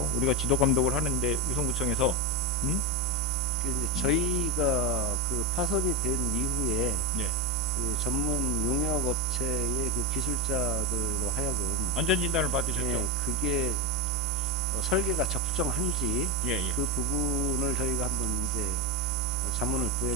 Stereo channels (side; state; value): both; normal; correlation 0.16